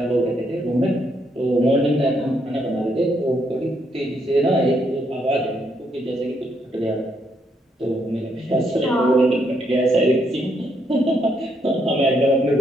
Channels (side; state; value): both; normal; correlation 0.75